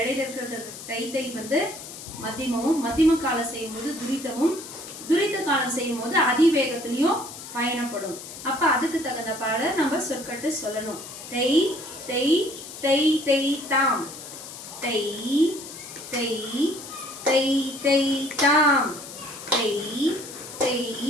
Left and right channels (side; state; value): left; noise; hiss, 13 dB below the sound